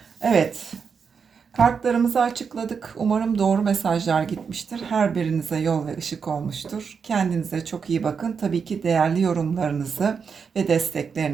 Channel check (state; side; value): quieter; left; 6.0 dB